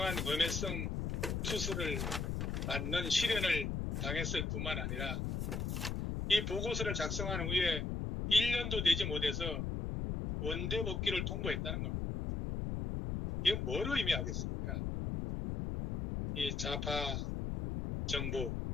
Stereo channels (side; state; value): left; noise; rumble, 1 dB below the sound